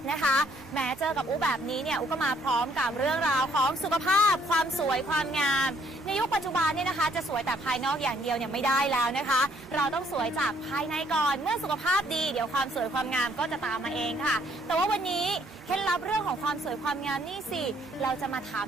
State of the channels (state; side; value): normal; both; correlation 0.66